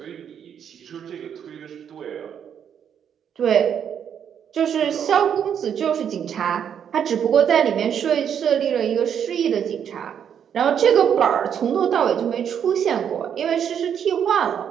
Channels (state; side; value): quieter; left; 8.4 dB